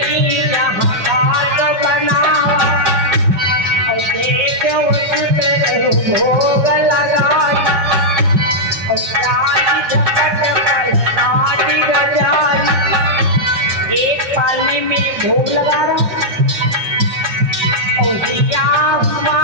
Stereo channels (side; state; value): left; late; 5.3 ms